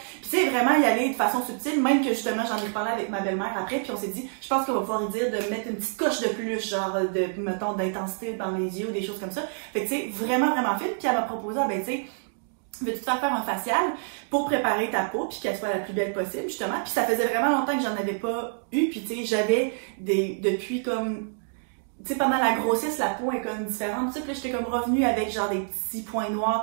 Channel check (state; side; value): silent; left; digital silence